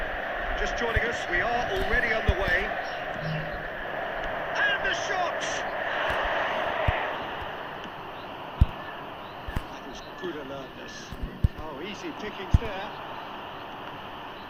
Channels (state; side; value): identical; both; correlation 1.00